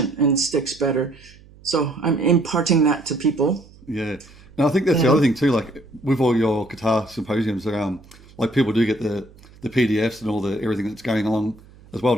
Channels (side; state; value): right; noise; hum, 24 dB below the sound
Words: and sticks better. So I'm imparting that to people. Yeah. And I think that's the other thing too, like with all your guitar symposiums around, like people do get the PDFs and all the everything that's going along as well,